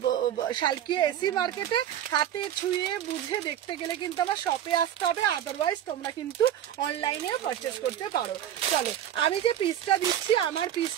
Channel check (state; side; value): quieter; left; 10.7 dB